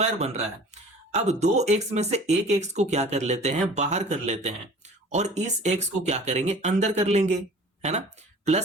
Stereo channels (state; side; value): normal; both; correlation 0.45